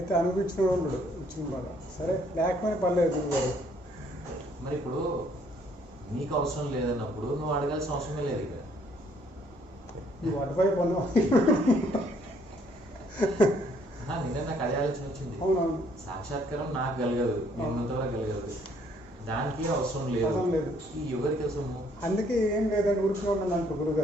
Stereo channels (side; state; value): both; normal; correlation 0.65